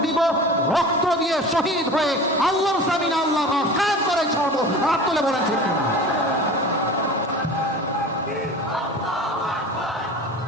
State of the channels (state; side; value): normal; both; correlation 0.36